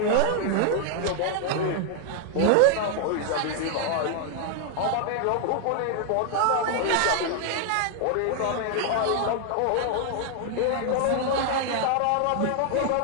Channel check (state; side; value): different; both; correlation 0.00